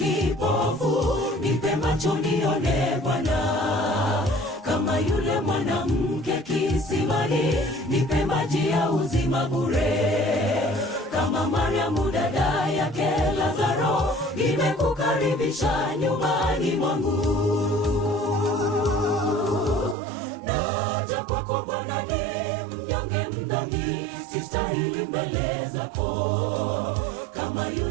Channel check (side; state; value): left; drops out; at 20.0 s